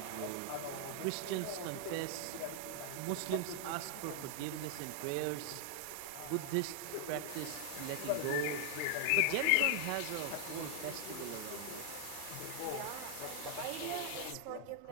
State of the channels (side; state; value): both; different; correlation 0.00